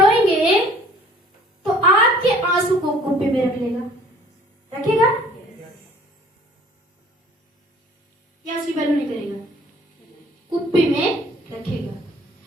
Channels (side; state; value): both; normal; correlation 0.53